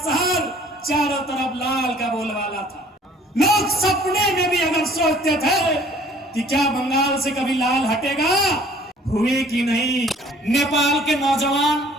चारों तरफ लाल का बोलबाला था। लोग सपने में भी अगर सोचते थे कि क्या बंगाल से कभी लाल हटेगा, हुए कि नहीं। नेपाल के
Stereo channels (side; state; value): both; normal; correlation 0.55